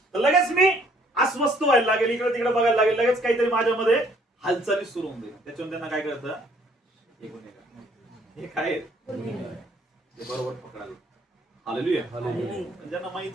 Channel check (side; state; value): both; normal; correlation 0.62